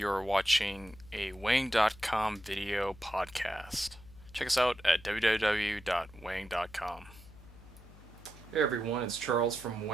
watching a Weighing.com video podcast. Check us out at www.weighing.com. Hey everyone, it's Charles from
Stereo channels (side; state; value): left; noise; hum, 20 dB below the sound